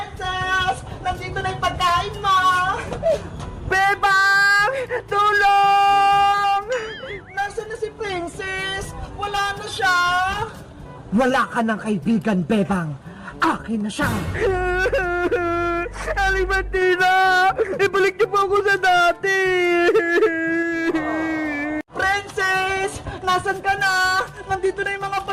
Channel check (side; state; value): both; identical; correlation 1.00